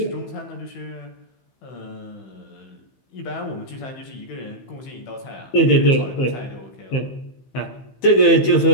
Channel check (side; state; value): right; late; 15 ms